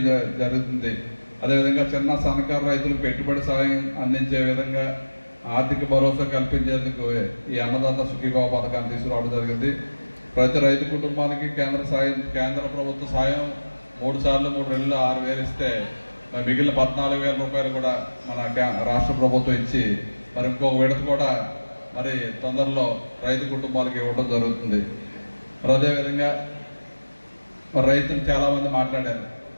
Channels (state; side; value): inverted; both; correlation -1.00